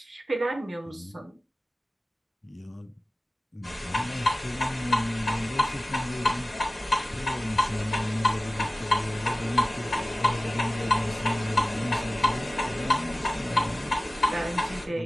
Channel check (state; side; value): normal; both; correlation 0.96